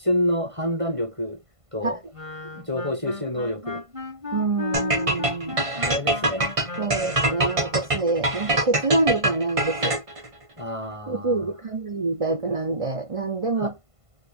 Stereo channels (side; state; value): left; late; 1.5 ms